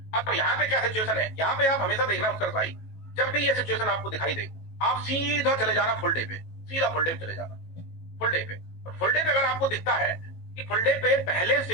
अब यहाँ पे क्या सिचुएशन है, यहाँ पे आप हमेशा देखना उत्कर्ष भाई, जब भी ये सिचुएशन आपको दिखाई दे, आप सीधा चले जाना फुल डे पे, सीधा फुल डे पे चले जाना, फुल डे पे। और फुल डे पे अगर आपको दिखता है कि फुल डे पे पहले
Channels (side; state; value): right; late; 18 ms